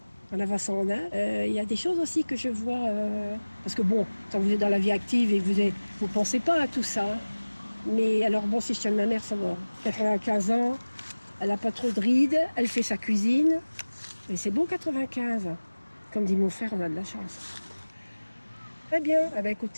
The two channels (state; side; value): inverted; both; correlation -1.00